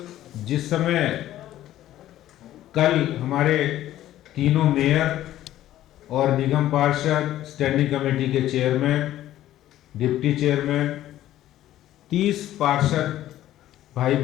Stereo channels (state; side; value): quieter; right; 13.4 dB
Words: जिस समय कल हमारे तीनों मेयर और निगम पार्षद, स्टैंडिंग कमेटी के चेयरमैन, डिप्टी चेयरमैन, 30 पार्षद भाई